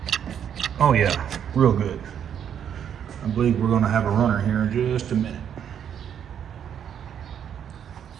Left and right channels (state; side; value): quieter; left; 8.8 dB